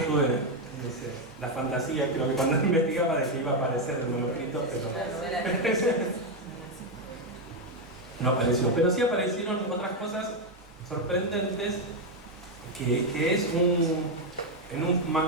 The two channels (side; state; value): both; normal; correlation 0.05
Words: no sé, la fantasía, creo que cuando investigaba de que iba a aparecer el manuscrito, pero no apareció. Pero sí aparecieron otras cosas sorprendentes, que es en un